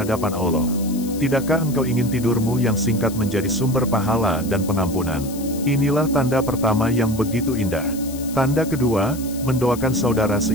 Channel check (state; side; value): noise; left; hiss, 15 dB below the sound